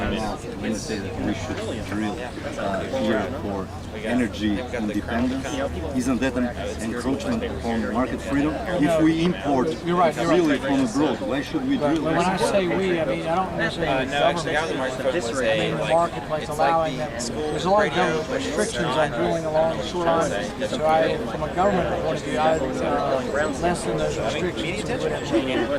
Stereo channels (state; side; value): identical; both; correlation 1.00